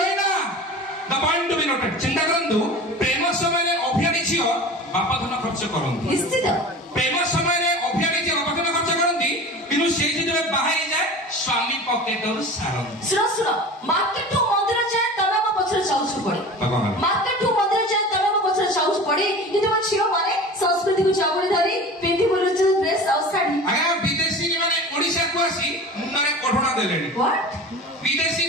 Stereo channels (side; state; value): both; normal; correlation 0.36